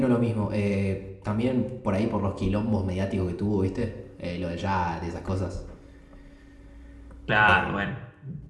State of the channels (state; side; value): identical; both; correlation 1.00